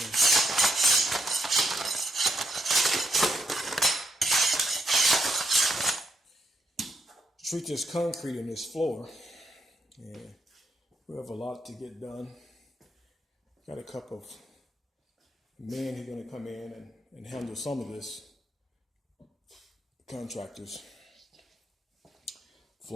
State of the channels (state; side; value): normal; both; correlation 0.77